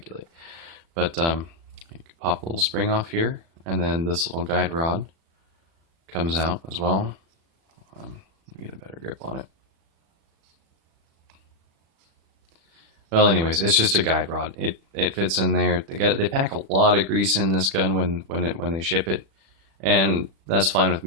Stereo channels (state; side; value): late; left; 36 ms